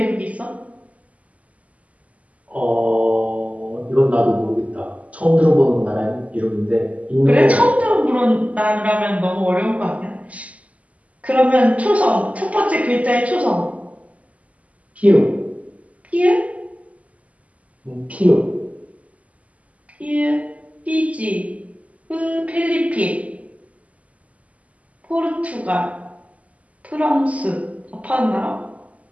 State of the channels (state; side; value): late; left; 0.069 ms